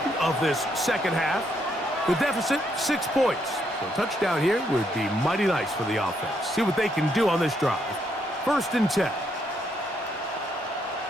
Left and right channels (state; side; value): normal; both; correlation 0.75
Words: of this second half. The deficit, 6 points. So a touchdown here would be mighty nice for the offense. See what they can do on this drive. 1st and 10.